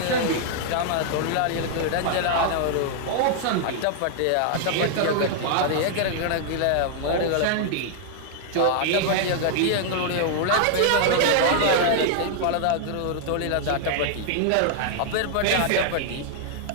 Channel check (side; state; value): both; different; correlation -0.01